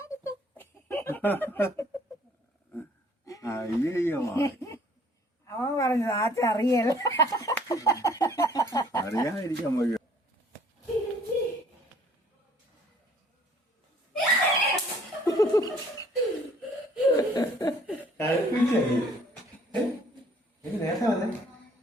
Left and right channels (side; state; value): both; normal; correlation 0.58